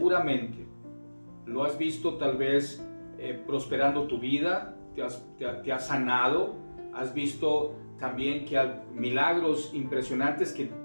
Lo has visto tal vez prosperando tu vida, te has sanado, has visto también que hay milagros impresionantes que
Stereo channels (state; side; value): inverted; both; correlation -1.00